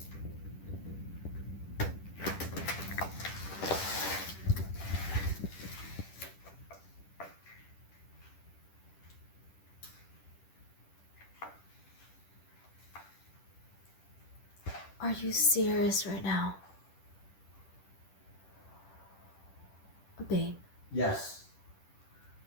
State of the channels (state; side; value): late; right; 10 ms